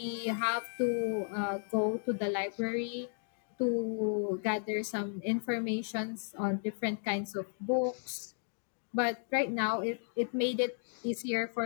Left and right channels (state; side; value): silent; right; digital silence